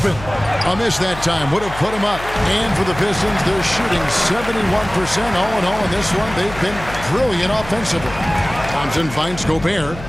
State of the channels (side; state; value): left; noise; hum, 13 dB below the sound